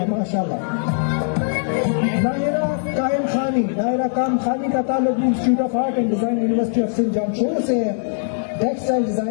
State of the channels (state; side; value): silent; right; digital silence